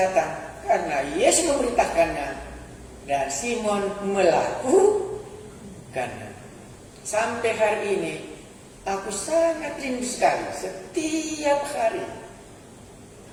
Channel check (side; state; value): both; identical; correlation 1.00